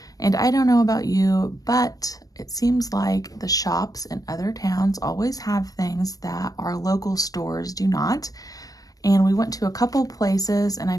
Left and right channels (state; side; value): late; right; 0.18 ms